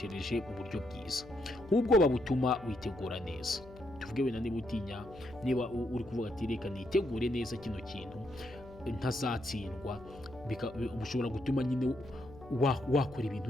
uburyo bwiza. Nk'ubwoba butuma witegura neza. Tuvuge wenda niba utinya, niba uri kuvuga ati reka nitegure neza kino kintu ntazatsindwa, bushobora gutuma nyine wakora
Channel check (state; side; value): noise; left; hum, 18 dB below the sound